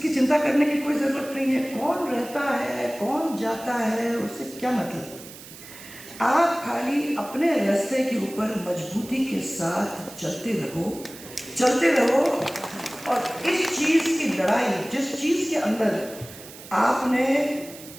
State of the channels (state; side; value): noise; right; hiss, 16 dB below the sound